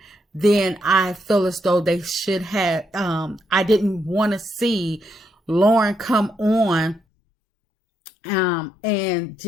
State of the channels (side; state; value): right; drops out; at 7.0 s